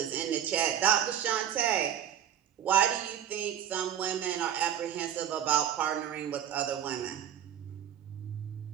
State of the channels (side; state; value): left; quieter; 10.0 dB